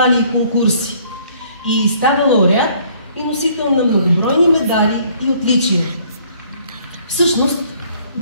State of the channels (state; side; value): inverted; both; correlation -0.61